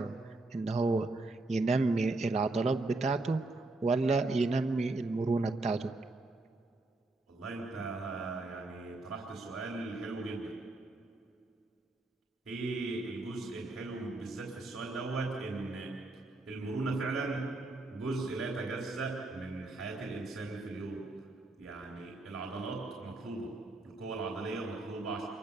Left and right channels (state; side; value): quieter; left; 3.1 dB